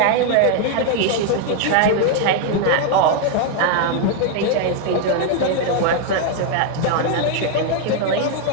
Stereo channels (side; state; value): both; different; correlation 0.00